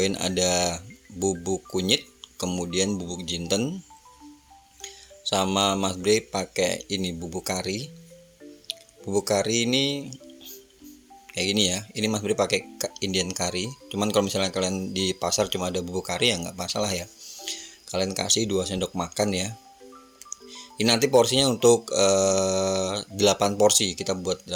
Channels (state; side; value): identical; both; correlation 1.00